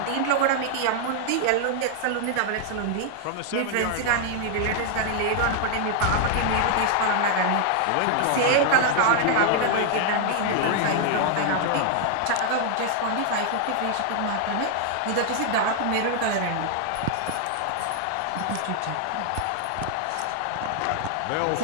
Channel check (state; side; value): different; both; correlation 0.00